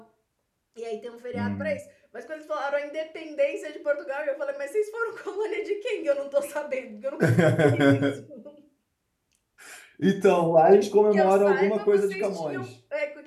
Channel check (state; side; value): identical; both; correlation 1.00